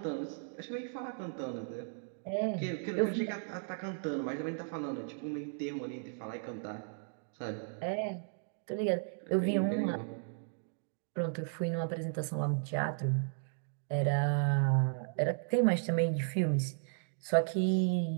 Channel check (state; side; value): silent; left; digital silence